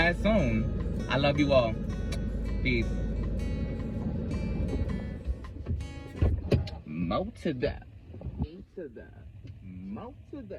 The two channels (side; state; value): both; identical; correlation 1.00